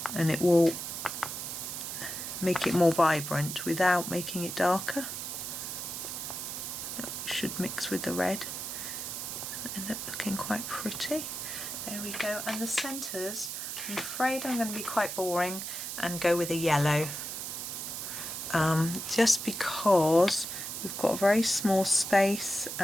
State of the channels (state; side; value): noise; right; hiss, 6 dB below the sound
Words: And it will make it more vibrant without making it darker. It should mix with the red and end up looking quite pretty. There we go. And the centres, I'm afraid I'm going to be quite boring and go with a yellow. Just because we've got a very small space